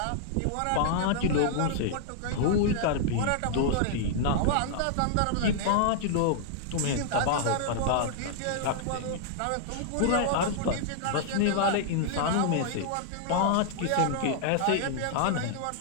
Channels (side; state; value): both; different; correlation -0.01